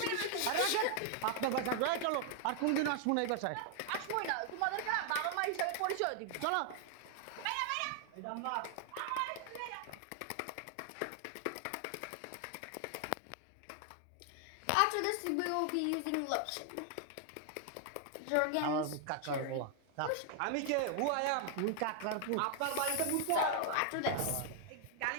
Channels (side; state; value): both; different; correlation 0.00